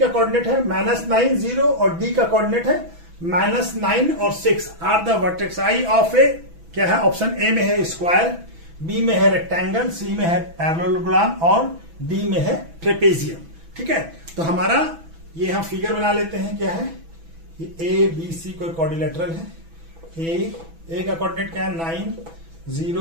कोऑर्डिनेट है -9 0 और डी का कोऑर्डिनेट है -9 और 6 are the vertex I of A. क्या है? ऑप्शन ए में है स्क्वायर, बी में है रेक्टेंगल, सी में है पैरेललोग्राम और डी में है ट्रेपेजियम। ठीक है। तो हमारा ये हम फिगर बना लेते हैं। क्या है? ये ए बी सी कोई क्वाड्रिलेटरल है। ए का कोऑर्डिनेट क्या है 9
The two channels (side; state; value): left; late; 6.1 ms